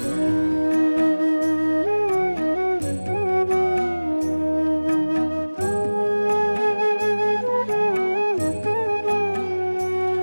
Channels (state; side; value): inverted; both; correlation -1.00